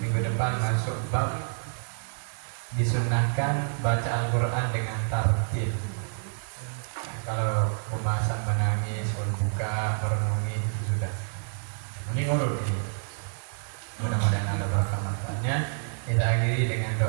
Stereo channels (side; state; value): left; silent; 57 dB below the other